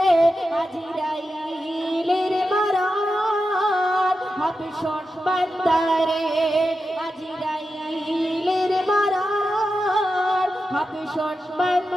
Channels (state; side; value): normal; both; correlation 0.90